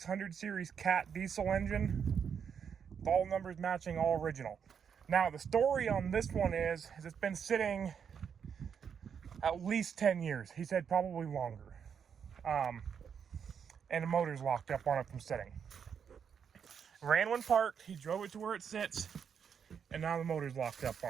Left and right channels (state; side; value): quieter; left; 7.2 dB